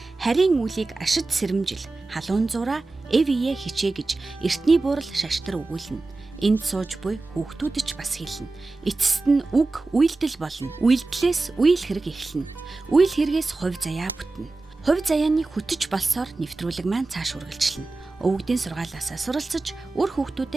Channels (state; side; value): quieter; left; 3.4 dB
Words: Харийн үлийг ашид сэрэмжил, халуун зураа эвие хичээ гэж эртний буурал шаштар өгүүлнэ. Энд сууж буй хүүхдүүд ч бас хэлнэ. Эцэст нь үг үйлдэл болно. Үйлдэлээс үйл хэрэг эхэлнэ. Үйл хэрэгээс хувь заяа бүтнэ. Хувь заяаны хөтөж болсоор нэвтрүүлэг маань цааш үргэлжлэнэ. Өвгдийн сургаалаасаа суралцаж үр